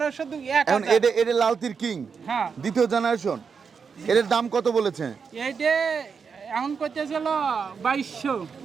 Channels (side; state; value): left; quieter; 5.9 dB